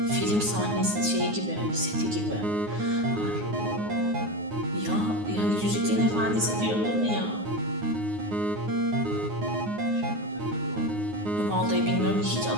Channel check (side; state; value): left; late; 9.6 ms